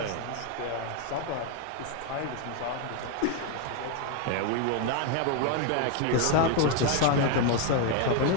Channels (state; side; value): different; both; correlation 0.01